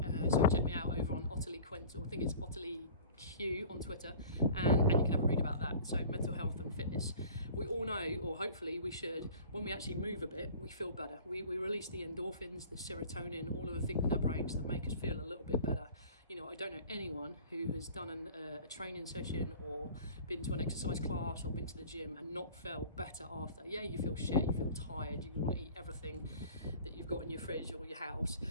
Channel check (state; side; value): inverted; both; correlation -0.44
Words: So check me out over on Ottilie Quint, or I think it's Ottilie Q on Twitter, and you can have a read about that. So mental health and fitness, we all know, or hopefully we should, when we actually move a bit, we feel better. We release the endorphins, the serotonin, all of the things in our brains that make us feel a little bit better. You know, I don't know anyone who has done a training session or been to an exercise class or been to the gym and not felt better after. Yeah, you feel shit, you feel tired, you want to eat everything that you've got in your fridge or your house,